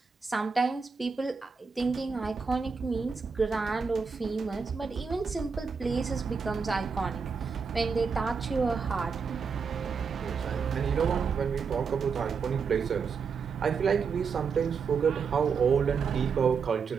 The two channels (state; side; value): quieter; left; 5.5 dB